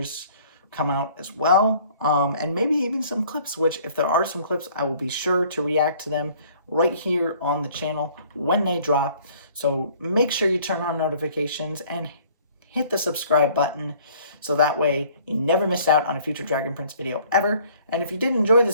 come out as well, and maybe even some clips, which if there are some clips, I will be sure to react to them right here on the channel when they drop. So make sure you turn on notifications and hit the subscribe button so that way you never miss out on a future Dragon Prince video ever. And if you did enjoy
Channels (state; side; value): inverted; both; correlation -0.56